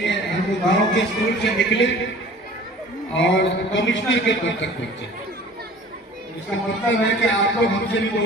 हम गांव के स्कूल से निकले और कमिश्नर के पद तक पहुंचे। इसका मतलब है कि आप लोग हमसे भी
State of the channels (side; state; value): both; normal; correlation 0.46